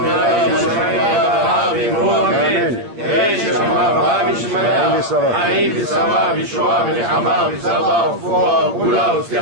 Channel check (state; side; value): late; left; 9.0 ms